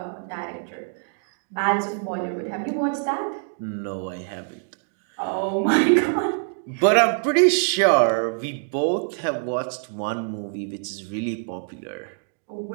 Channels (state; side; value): silent; left; 62 dB below the other